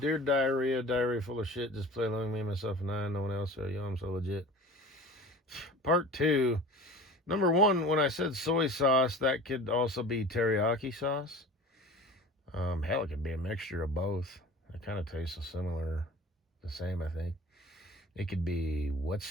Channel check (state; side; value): normal; both; correlation 0.39